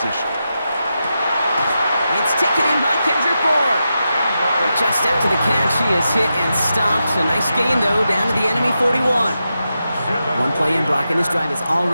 It's taken in by Kendrick Bourne. Just after the catch, he is hit and stopped. A nice gain, though, down to the enemy 41. One play in, Brock, and this drive is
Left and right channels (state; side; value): inverted; both; correlation -0.88